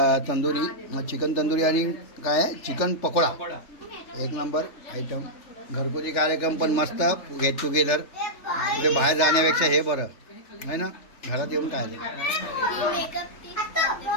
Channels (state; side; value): late; right; 3.3 ms